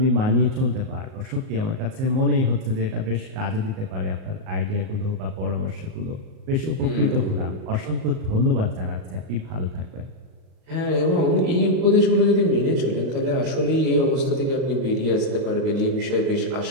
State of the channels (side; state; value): left; late; 38 ms